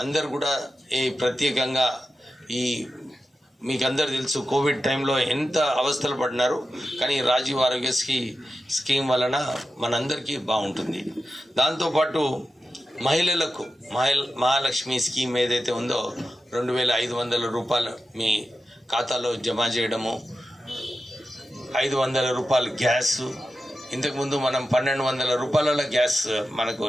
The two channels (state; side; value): normal; both; correlation 0.92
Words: అందరు కూడా ఈ ప్రత్యేకంగా ఈ మీకు అందరు తెలుసు కోవిడ్ టైంలో ఎంత అవస్థలు పడినారు, కానీ రాజీవ్ ఆరోగ్యశ్రీ స్కీమ్ వలన మనందరికీ బాగుంటుంది. దాంతోపాటు మహిళలకు మహాలక్ష్మి స్కీమ్ ఏదైతే ఉందో 2,500 రూపాయలు మీ ఖాతాలో జమ చేయడము, 500 రూపాయలు గ్యాస్. ఇంతకుముందు మనం 1,200 రూపాయల గ్యాస్ మనకు